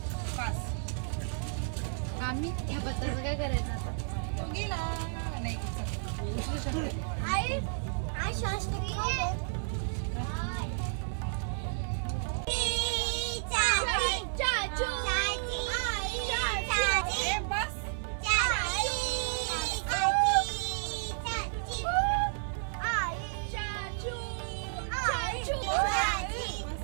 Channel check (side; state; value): left; silent; 56 dB below the other